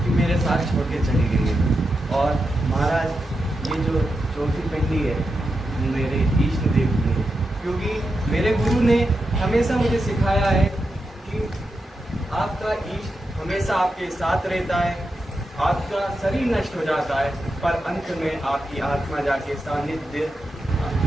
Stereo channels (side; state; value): both; normal; correlation 0.88